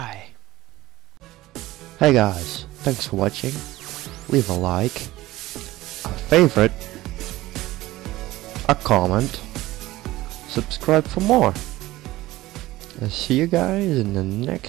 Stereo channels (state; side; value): quieter; left; 17.3 dB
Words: Hey guys, thanks for watching. Leave a like, a favorite, a comment, subscribe for more. I'll see you guys in the